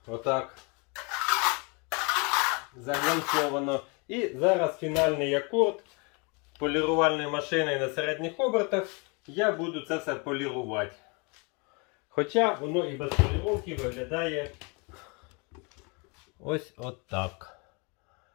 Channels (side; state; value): right; quieter; 31.5 dB